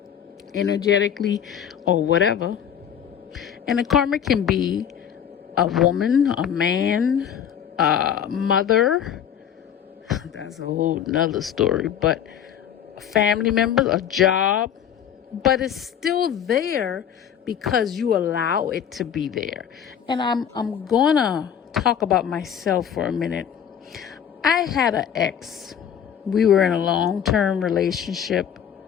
energetically or whatever. And the karmic can be a woman, a man, a mother. That's a whole nother story. But a family member, a job. But it's still there because you allow it to be there. And I'm gonna talk about myself for a minute. I had an ex. We were in a long-term relationship.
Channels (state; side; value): quieter; right; 8.9 dB